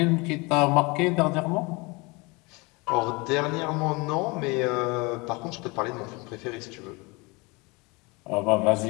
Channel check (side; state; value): right; quieter; 26.6 dB